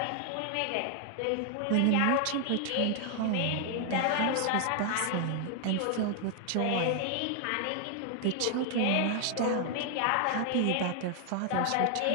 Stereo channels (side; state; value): both; different; correlation 0.00